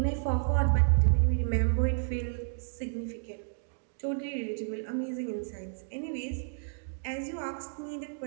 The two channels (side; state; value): left; silent; digital silence